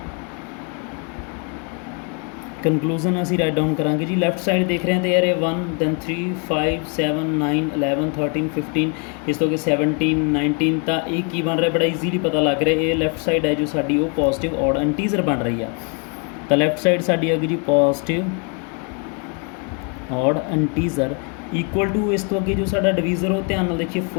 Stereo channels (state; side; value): quieter; right; 38.1 dB